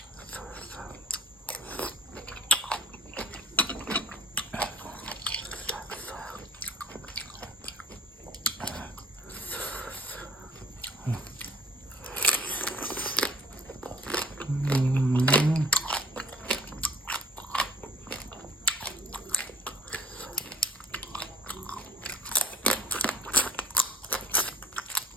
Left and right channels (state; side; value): normal; both; correlation 0.52